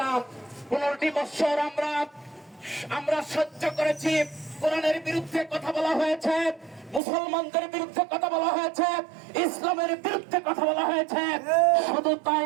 15টি বছর আমরা সহ্য করেছি। কোরআনের বিরুদ্ধে কথা বলা হয়েছে, মুসলমানদের বিরুদ্ধে কথা বলা হয়েছে, ইসলামের বিরুদ্ধে কথা বলা হয়েছে। শুধু তাই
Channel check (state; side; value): drops out; left; at 7.0 s